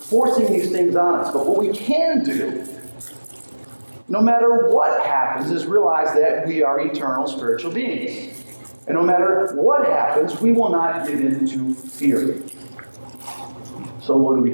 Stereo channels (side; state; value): both; inverted; correlation -1.00